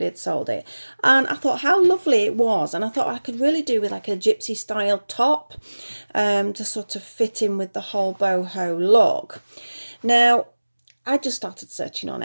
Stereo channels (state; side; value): inverted; both; correlation -1.00